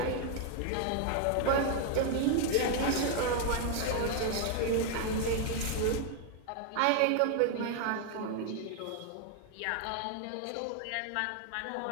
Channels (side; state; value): both; different; correlation 0.00